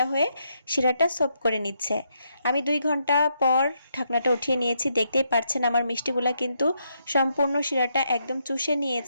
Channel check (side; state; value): both; inverted; correlation -0.78